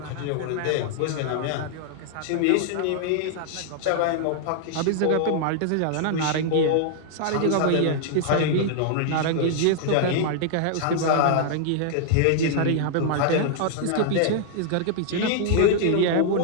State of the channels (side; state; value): both; different; correlation -0.01